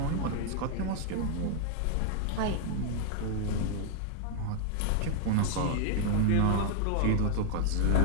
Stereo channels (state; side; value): different; both; correlation 0.00